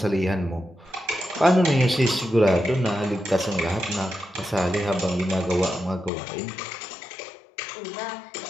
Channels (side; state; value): right; drops out; at 6.1 s